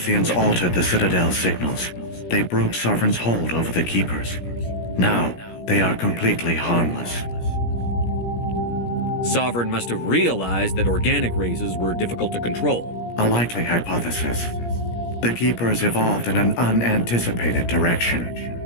altered the Citadel's signals, they broke Sovereign's hold over the Keepers. Now, they are completely harmless. Sovereign must have realized that organic races were difficult to control. A likely hypothesis. The Keepers evolved in an unanticipated direction.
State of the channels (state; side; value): late; right; 17 ms